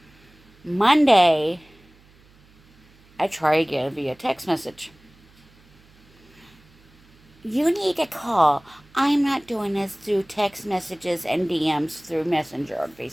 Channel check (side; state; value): right; noise; hum, 29 dB below the sound